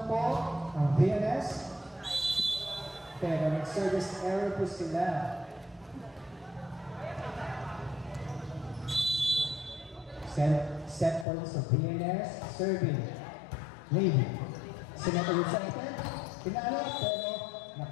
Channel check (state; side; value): drops out; right; at 11.2 s